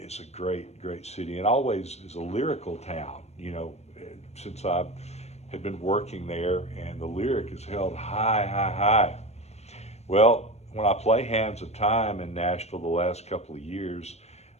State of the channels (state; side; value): late; right; 0.31 ms